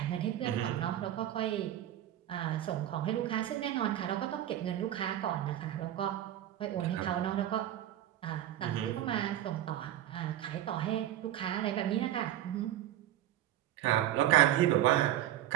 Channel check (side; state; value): left; quieter; 12.5 dB